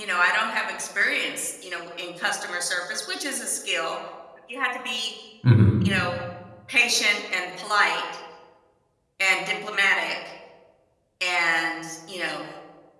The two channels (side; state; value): both; identical; correlation 1.00